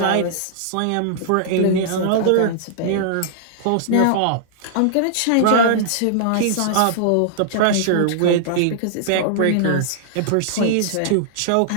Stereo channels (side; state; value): both; different; correlation -0.01